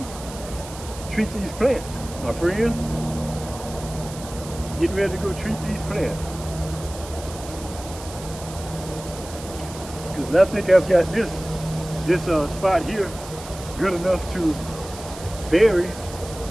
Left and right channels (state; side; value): noise; right; hiss, 14 dB below the sound